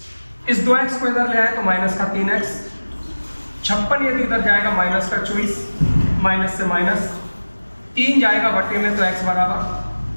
इस 2x को इधर ले आए तो माइनस का 3x। 56 यदि इधर जाएगा माइनस का 24, माइनस से माइनस 3 जाएगा बटे में, तो x बराबर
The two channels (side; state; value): both; inverted; correlation -1.00